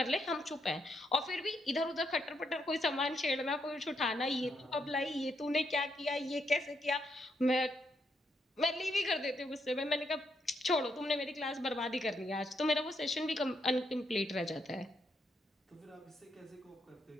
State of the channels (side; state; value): both; normal; correlation 0.78